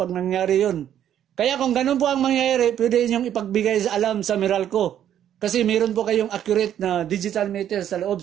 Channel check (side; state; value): left; quieter; 10.4 dB